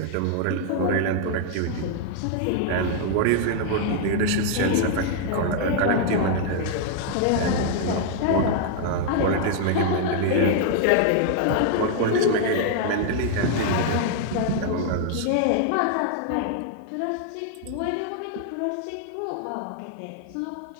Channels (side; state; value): both; different; correlation 0.00